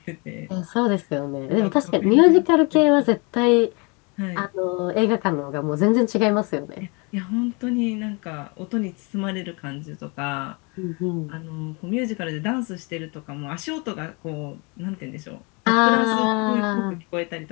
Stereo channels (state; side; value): quieter; right; 30.7 dB